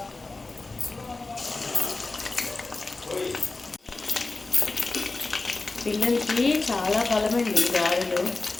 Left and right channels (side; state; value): right; quieter; 3.5 dB